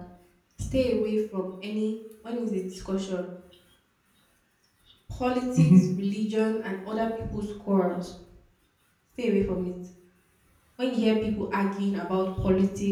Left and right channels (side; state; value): both; identical; correlation 1.00